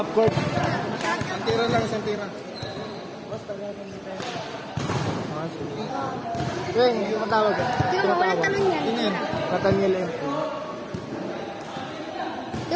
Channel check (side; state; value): both; identical; correlation 1.00